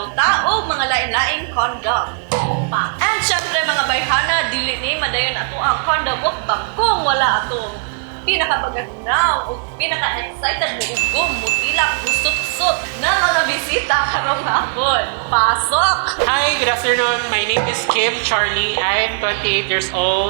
Tao mga lain-laing condom. And syempre mga bayhana, dili ni madayon ato ang condom mukbang kung wala atong pinakabaganaw o pinaka-excited mo ugom, mutilak, busot-sot na mga bisita karong hapon. Pasok! Hi, good afternoon. My name is Kimcharlie. I'm 28 years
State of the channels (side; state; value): left; silent; 61 dB below the other